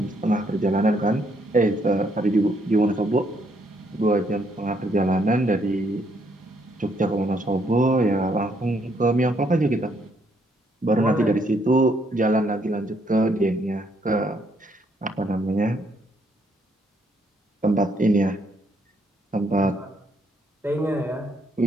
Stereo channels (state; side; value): normal; both; correlation 0.72